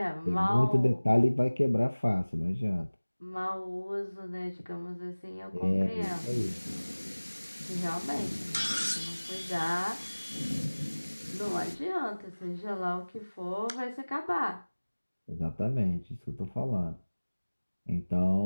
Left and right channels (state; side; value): inverted; both; correlation -1.00